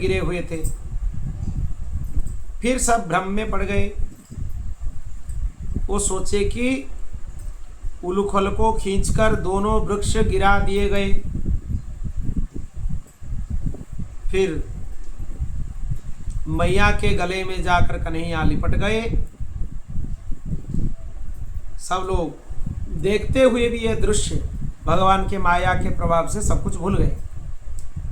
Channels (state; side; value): identical; both; correlation 1.00